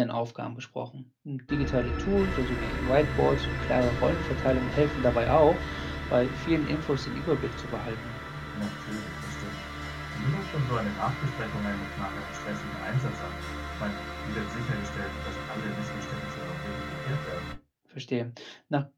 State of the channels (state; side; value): identical; both; correlation 1.00